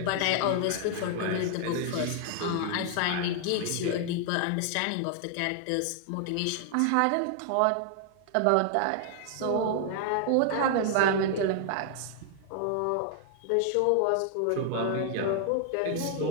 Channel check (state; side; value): different; both; correlation 0.00